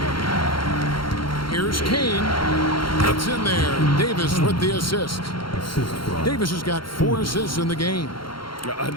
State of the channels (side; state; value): right; late; 0.73 ms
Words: Here's Kane. It's in there. Davis with the assist. Davis has got 4 assists in the game.